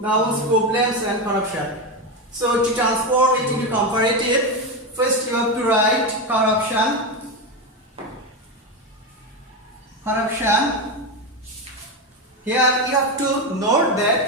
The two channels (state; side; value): normal; both; correlation 0.13